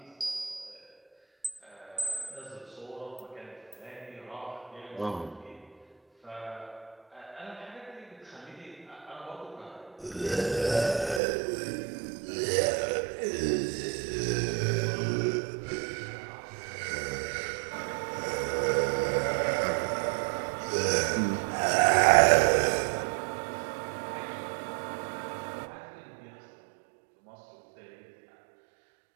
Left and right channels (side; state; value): left; drops out; at 11.2 s